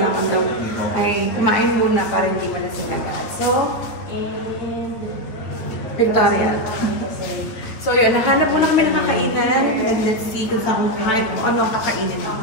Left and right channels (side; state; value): right; late; 8.9 ms